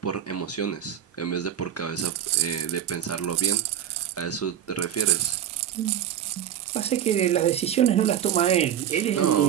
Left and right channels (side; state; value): left; quieter; 10.2 dB